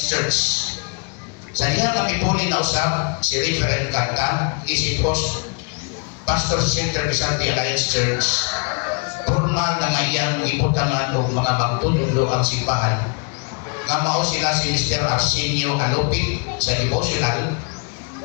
Church. Sa diha nga mipuli na usap si Reverend Kanta, isipos Pastor sa Center Vicente Alliance Church, formal nga iyang ibutangan o mga magtutulo ang simbahan nga mao sila si Mr. Arsenio Alupit sa devotional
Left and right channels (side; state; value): right; quieter; 36.7 dB